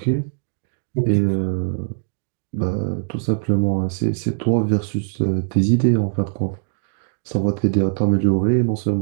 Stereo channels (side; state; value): left; silent; 62 dB below the other